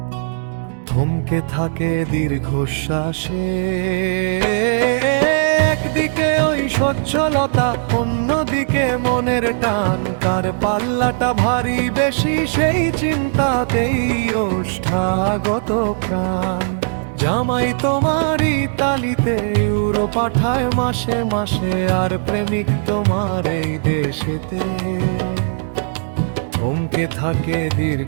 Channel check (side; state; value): left; silent; digital silence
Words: থমকে থাকে দীর্ঘশ্বাসে। একদিকে ওই সচ্ছলতা, অন্যদিকে মনের টান, কার পাল্লাটা ভারী বেশি সেই চিন্তাতেই ওষ্ঠাগত প্রাণ। জামাই তোমার ইতালিতে ইউরো পাঠায় মাসে মাসে, আর প্রেমিক তোমার এই দেশেতে থমকে থাকে